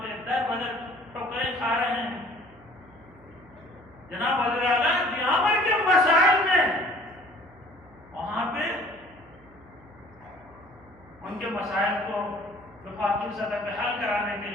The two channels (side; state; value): right; noise; hum, 25 dB below the sound